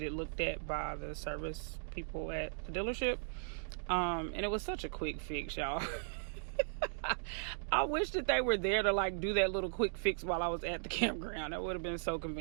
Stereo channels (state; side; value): silent; left; digital silence